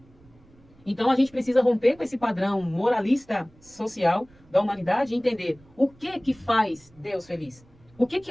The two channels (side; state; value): right; noise; rumble, 28 dB below the sound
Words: Então a gente precisa romper com esse padrão moralista social da humanidade e entender o que faz Deus feliz. O que